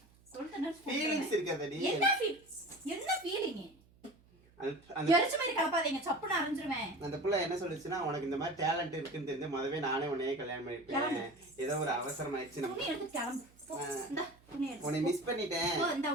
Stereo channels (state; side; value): noise; right; hum, 29 dB below the sound